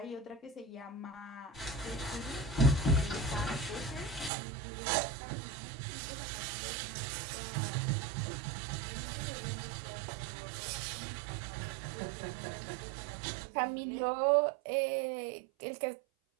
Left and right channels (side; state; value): left; drops out; at 4.3 s